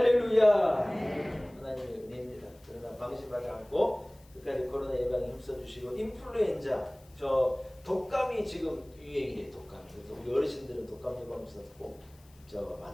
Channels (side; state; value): left; noise; hiss, 29 dB below the sound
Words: 하나님의 은혜입니다. 그러나 방심하지 않고 끝까지 코로나 예방에 힘써주시고 인플루엔자 저 독감이 지금 유행이래요. 독감. 그래서 우리 어르신들은 독감 예방주사 꼭